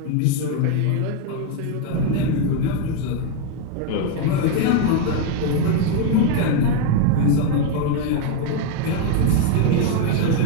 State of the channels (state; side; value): different; both; correlation 0.01